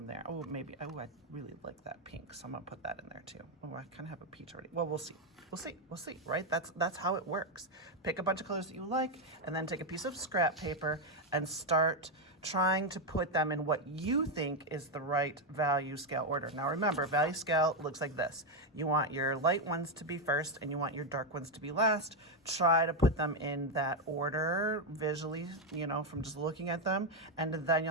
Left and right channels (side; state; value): both; normal; correlation 0.05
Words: there. Oh, maybe, oh, I really like that pink, so I'm gonna put that in there too. Oh, I kind of have a peach already. Well, we'll see, right? That's how it works. Pick a bunch of colors that you like, and then take a piece of scrap paper and start trying to put them in what you think is the right value scale order. Now remember, value scale looks like this. You want your light ones to be first and you want your dark ones to be last. Try to put them in that order visually, from just looking at them, and then